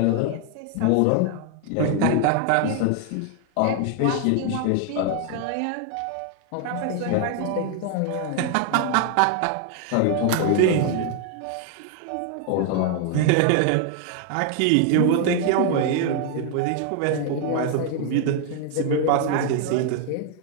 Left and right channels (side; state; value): both; different; correlation 0.00